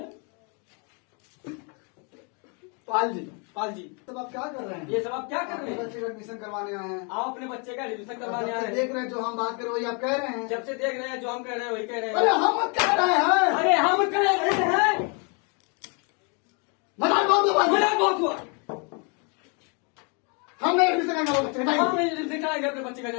पाल जी, पाल जी तब आप क्या कर रहे हैं? ये सब आप क्या कर अपने रहे हैं? बच्चे का एडमिशन करवाने आए हैं। आप अपने बच्चे का एडमिशन करवाने जब आए से हैं। देख रहे हैं, जो हम बात कर रहे वही आप कह रहे हैं। जब से देख रहे हैं जो हम कह रहे हैं वही कह रहे अरे हैं। हम कह रहे हैं। अरे हम कह रहे हैं। मजाक बहुत हुआ। मजाक बहुत हुआ। हम नहीं एडमिशन करेंगे वो बच्चे का। हम एडमिशन कराएंगे अपने बच्चे का।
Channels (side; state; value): right; quieter; 35.4 dB